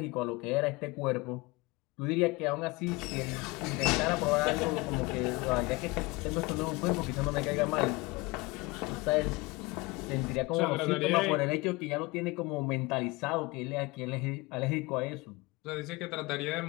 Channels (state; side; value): quieter; right; 23.9 dB